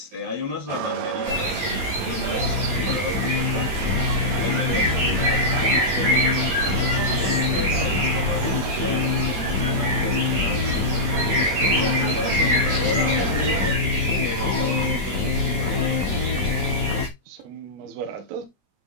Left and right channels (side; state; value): left; late; 21 ms